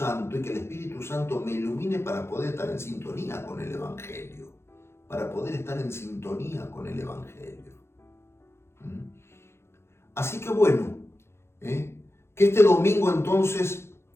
y que el Espíritu Santo me ilumine para poder estar en sintonía con el Evangelio. Así que bueno, que este domingo entonces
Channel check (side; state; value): right; late; 0.12 ms